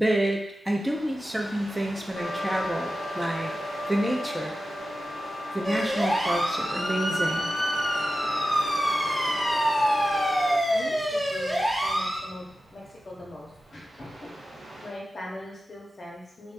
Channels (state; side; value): normal; both; correlation 0.93